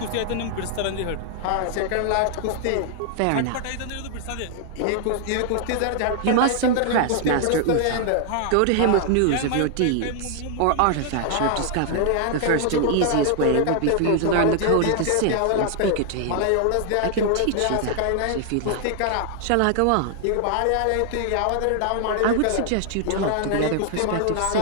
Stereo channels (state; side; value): different; both; correlation 0.00